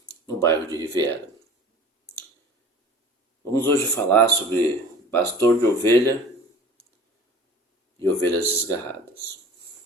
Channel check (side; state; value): both; normal; correlation 0.43